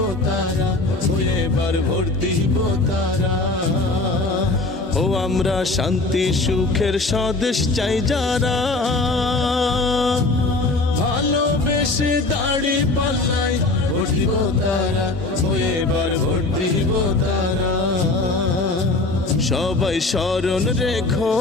তারা, এবার ভোট দিব তারা। ও আমরা শান্তি সুখের স্বদেশ চাই যারা, ভালোবেসে দাড়ি পাল্লাই ভোট দিব তারা, এবার ভোট দিব তারা। সবাই স্মরণ রেখো,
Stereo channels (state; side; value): quieter; right; 3.1 dB